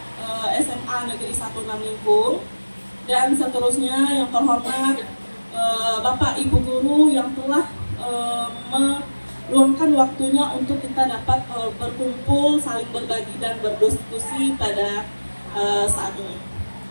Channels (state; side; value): inverted; both; correlation -1.00